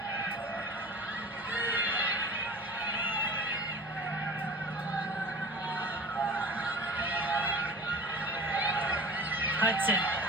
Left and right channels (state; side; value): normal; both; correlation 0.39